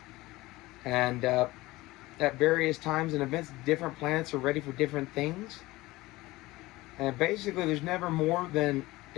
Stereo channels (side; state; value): right; quieter; 19.5 dB